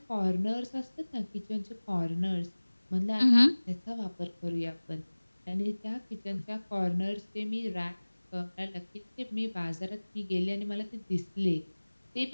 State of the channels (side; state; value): both; inverted; correlation -1.00